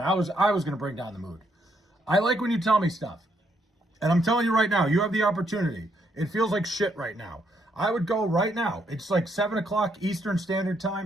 I was going to bring down the mood. I like when you tell me stuff. And I'm telling you right now, you have the opportunity. It feels like shit right now. I would go right now. It's like 7 o'clock Eastern Standard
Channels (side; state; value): both; normal; correlation 0.75